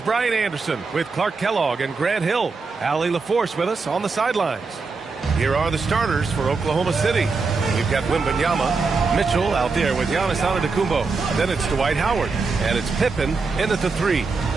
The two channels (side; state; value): left; quieter; 4.4 dB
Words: Brian Anderson with Clark Kellogg and Grant Hill. Allie LaForce with us on the sidelines. Here are the starters for Oklahoma City. We've got Wembanyama, Mitchell out there with Giannis Antetokounmpo. Then it's Dwight Howard, and it's Pippen in at the 3.